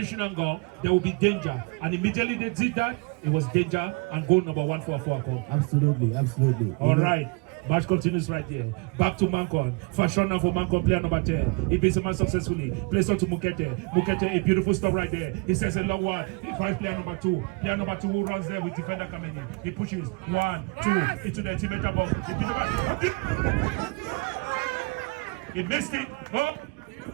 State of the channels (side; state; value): left; quieter; 30.3 dB